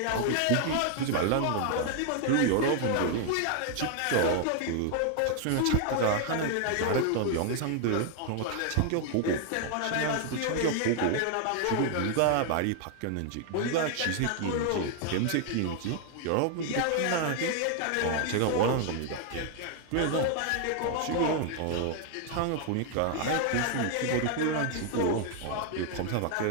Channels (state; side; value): different; both; correlation 0.00